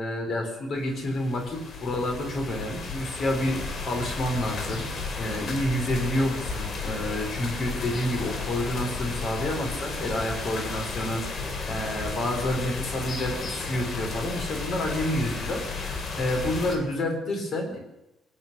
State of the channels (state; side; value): normal; both; correlation 0.71